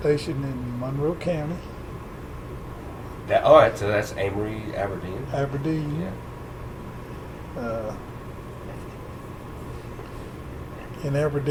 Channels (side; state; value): both; identical; correlation 1.00